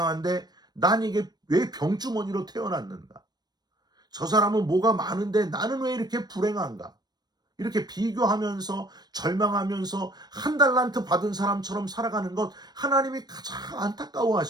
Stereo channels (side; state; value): left; late; 0.19 ms